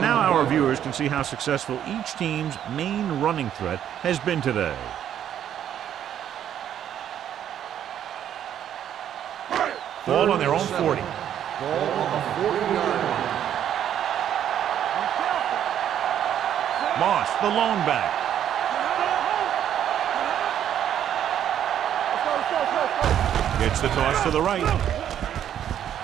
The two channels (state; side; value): quieter; left; 10.1 dB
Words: now our viewers can see how successful each team's main running threat has been today. Ball on their own 40. Ball on the 40-yard line. Moss, the lone back. Gets the toss to the right. This